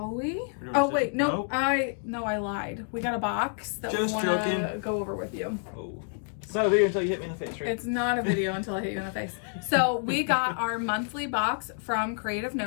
we? Oh, wait, no, I lied. We got a box that we want to go over with you. Oh. It's not a video until you hit me in the face, right? It's not a video until I hit you in the face. So we got our monthly box from Creative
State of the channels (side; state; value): right; silent; 55 dB below the other